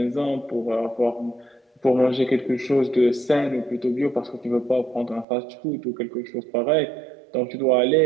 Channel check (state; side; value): drops out; left; at 5.2 s